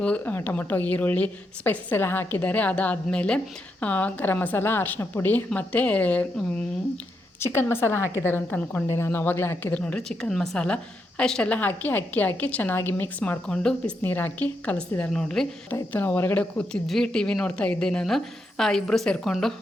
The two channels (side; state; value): both; normal; correlation 0.82